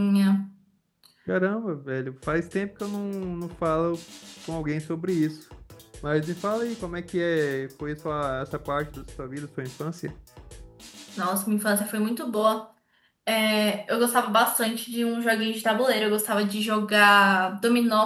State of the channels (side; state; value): both; identical; correlation 1.00